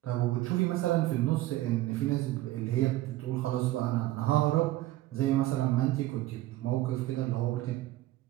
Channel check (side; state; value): left; quieter; 16.3 dB